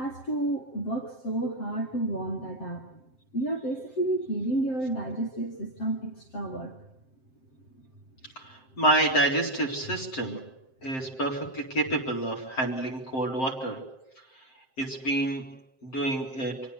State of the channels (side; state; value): right; late; 7.6 ms